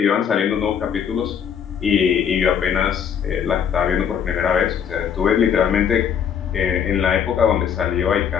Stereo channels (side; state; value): right; quieter; 8.0 dB